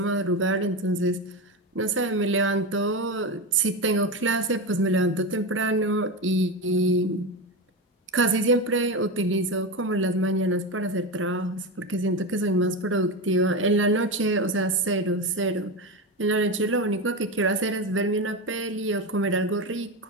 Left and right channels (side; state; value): both; normal; correlation 0.18